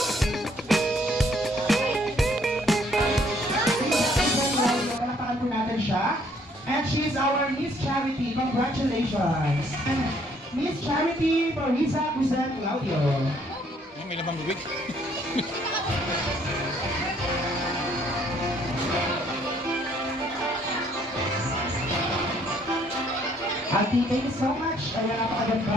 palakpakan po natin siya. And she's our Miss Charity. Congratulations. And Miss Charity Marisa Guzan Claudio. May labang bibig. Ati, thank you so much. Ayan,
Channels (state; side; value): normal; both; correlation 0.65